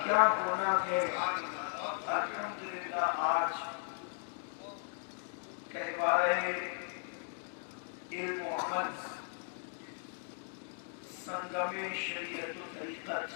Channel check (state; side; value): silent; right; 53 dB below the other